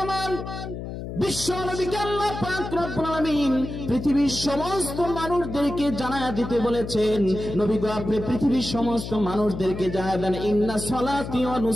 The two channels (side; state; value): left; noise; hum, 8 dB below the sound